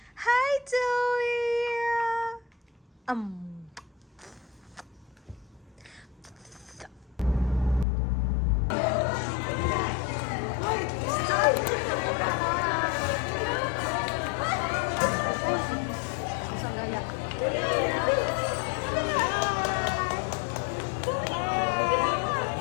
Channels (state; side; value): drops out; right; at 7.9 s